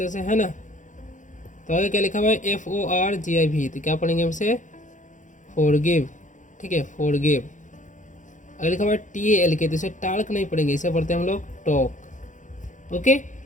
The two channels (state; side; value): late; right; 0.36 ms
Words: से, है ना। तो आगे क्या लिखा हुआ है, FORGIV, तो क्या पढ़ेंगे हमसे, फॉरगिव, ठीक है, फॉरगिव। अगर लिखा हुआ है TALK तो इसे टाल्क नहीं पढ़ेंगे, इसे पढ़ते हैं हम लोग टॉक। ओके,